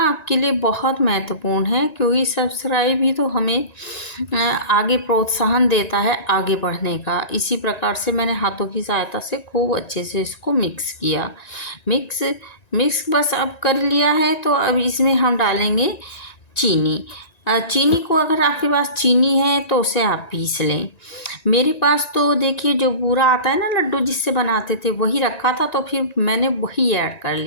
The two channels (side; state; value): right; late; 1.9 ms